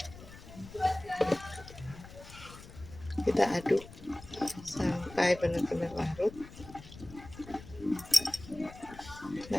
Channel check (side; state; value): left; noise; rumble, 17 dB below the sound